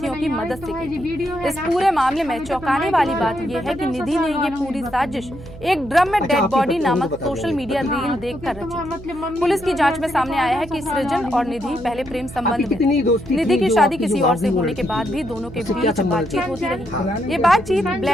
की मदद से की थी। इस पूरे मामले में चौंकाने वाली बात यह है कि निधि ने ये पूरी साजिश एक ड्रम में डेड बॉडी नामक सोशल मीडिया रील देखकर रची थी। पुलिस की जांच में सामने आया है कि सृजन और निधि पहले प्रेम संबंध में निधि की शादी किसी और से होने के बाद भी दोनों के बीच बातचीत होती रही। ये बातचीत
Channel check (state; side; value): noise; right; hum, 16 dB below the sound